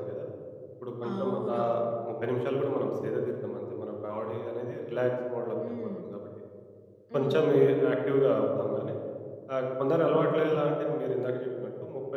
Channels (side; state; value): both; identical; correlation 1.00